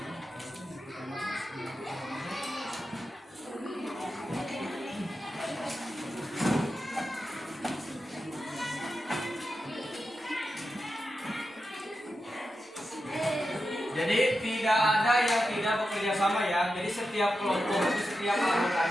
Jadi tidak ada yang tidak bekerja sama ya. Jadi setiap kelompok itu setiap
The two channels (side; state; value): both; normal; correlation 0.90